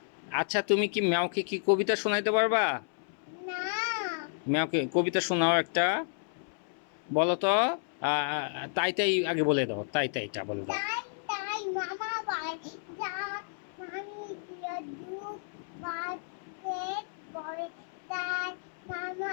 আচ্ছা, তুমি কি ম্যাওকে কি কবিতা শোনাইতে পারবা? না। ম্যাওকে কবিতা শোনাও একটা, বলো তো। তাই তাই আগে বলে দাও, তাই তাইটা বলে দাও। তাই তাই মামা বাড়ি যা আমি দিয়ে দুধ ভাত পেট ভরে তাই মামা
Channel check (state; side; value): silent; right; 57 dB below the other